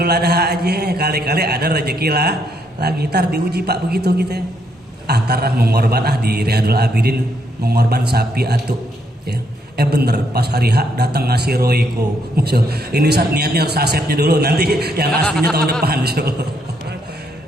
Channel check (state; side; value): normal; both; correlation 0.74